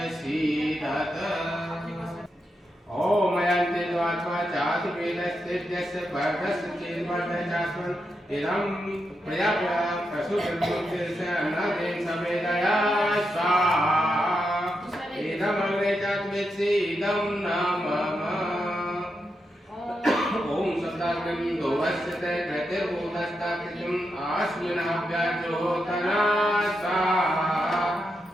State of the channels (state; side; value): normal; both; correlation 0.85